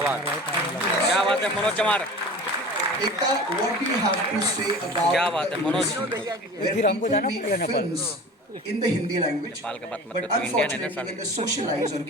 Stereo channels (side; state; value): both; normal; correlation 0.38